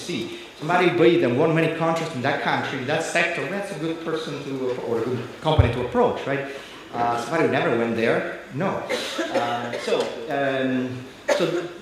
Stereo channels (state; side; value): identical; both; correlation 1.00